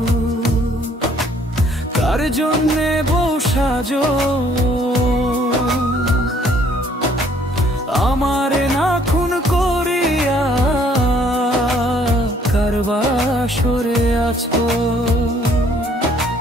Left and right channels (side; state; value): both; normal; correlation 0.61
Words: কার জন্যে বউ সাজো? আমারে না খুন করিয়া কার বাসরে আছো?